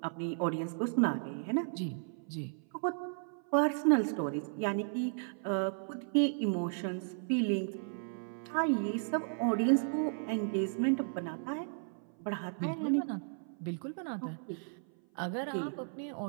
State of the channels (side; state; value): left; silent; 55 dB below the other